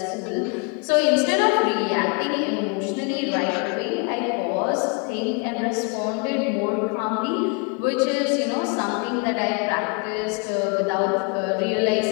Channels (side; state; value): right; quieter; 34.1 dB